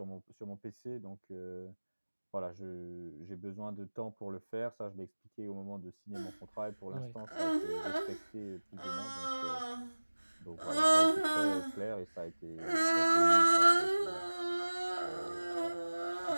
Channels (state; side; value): inverted; both; correlation -1.00